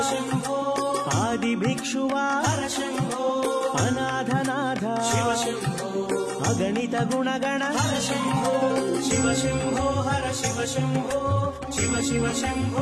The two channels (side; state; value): both; identical; correlation 1.00